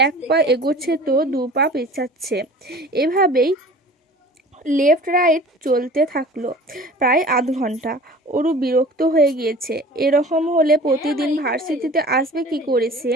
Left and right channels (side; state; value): both; normal; correlation 0.43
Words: এক পা এগোচ্ছে তো দু পা পেছাচ্ছে। এভাবেই লেফট রাইট চলতে থাকলো প্রায় আধ ঘন্টা। ওরু বিরক্ত হয়ে গিয়েছে। এরকম হলে প্রতিদিন ভার্সিটিতে আসবে কি করে সে?